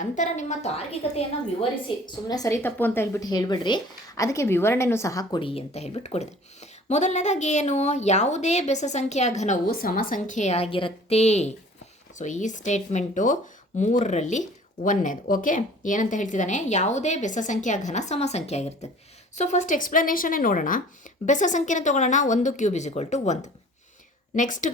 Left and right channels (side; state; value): both; normal; correlation 0.49